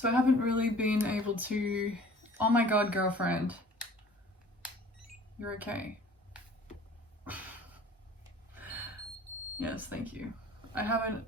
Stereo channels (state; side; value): normal; both; correlation 0.49